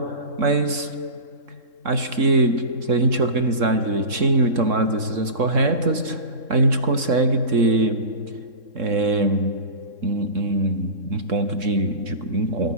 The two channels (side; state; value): left; late; 3.7 ms